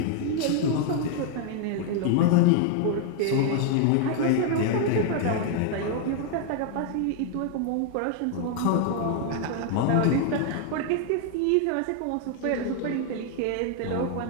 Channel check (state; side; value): different; both; correlation 0.00